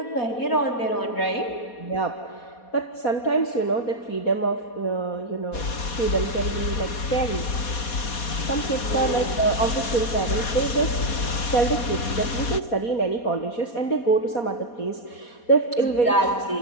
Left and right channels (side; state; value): right; late; 4.2 ms